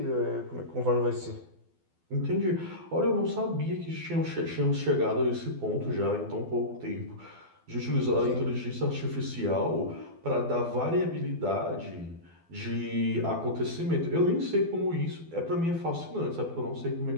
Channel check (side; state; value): left; late; 12 ms